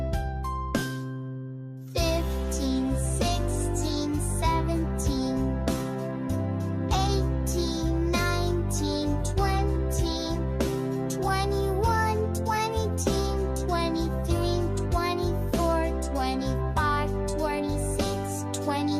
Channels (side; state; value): both; identical; correlation 1.00